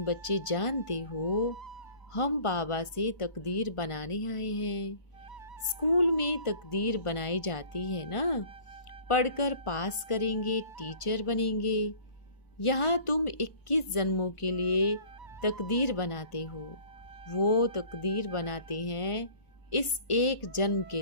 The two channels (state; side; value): late; right; 1.4 ms